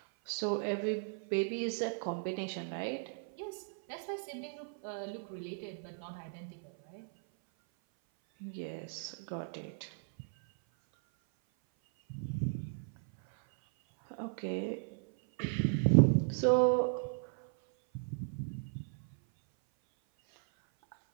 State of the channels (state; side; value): silent; left; 54 dB below the other